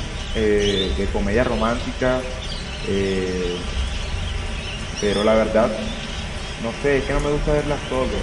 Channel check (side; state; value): both; identical; correlation 1.00